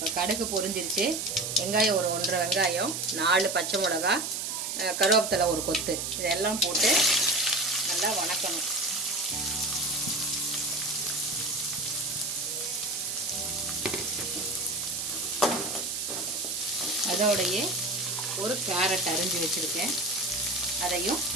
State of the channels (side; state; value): right; noise; hiss, 3 dB below the sound